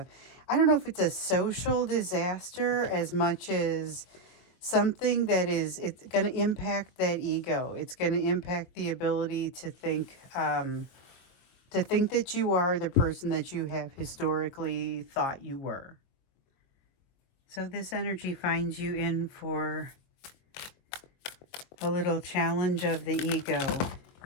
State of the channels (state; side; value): late; right; 23 ms